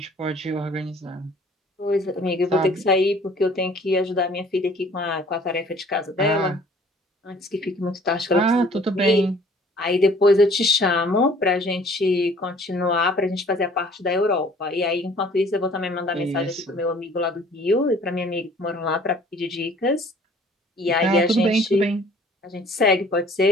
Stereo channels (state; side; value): normal; both; correlation 0.54